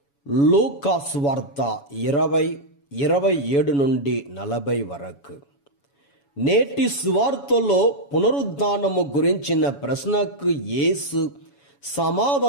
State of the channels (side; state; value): right; late; 7.1 ms